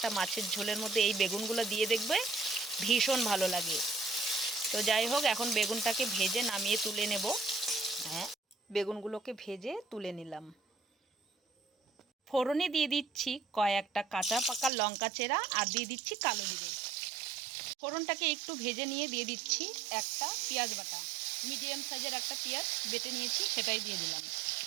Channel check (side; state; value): left; drops out; at 14.7 s